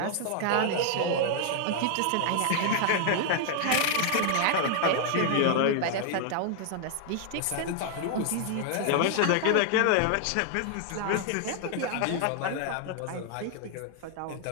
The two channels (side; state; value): both; different; correlation 0.00